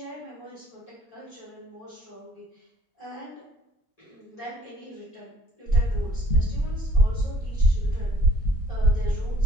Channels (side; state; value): both; normal; correlation 0.57